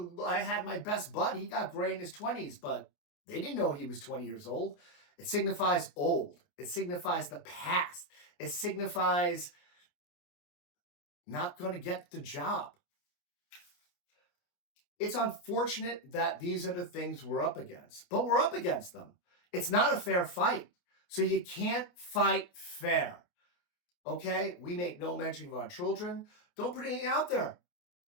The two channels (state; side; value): late; right; 29 ms